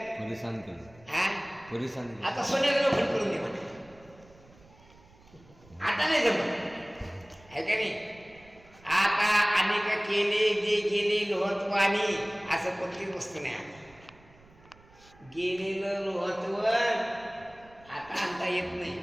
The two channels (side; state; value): right; noise; rumble, 26 dB below the sound